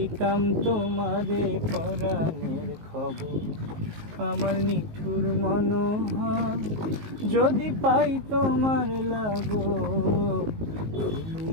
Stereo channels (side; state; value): left; late; 19 ms